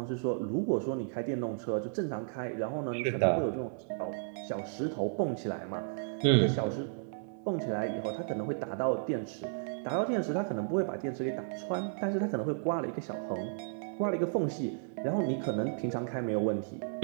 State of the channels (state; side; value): silent; left; digital silence